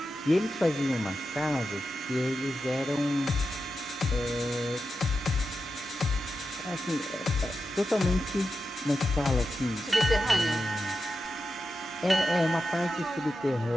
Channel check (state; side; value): normal; both; correlation 0.90